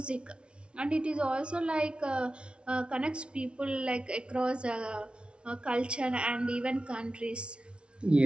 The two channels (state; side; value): late; left; 0.058 ms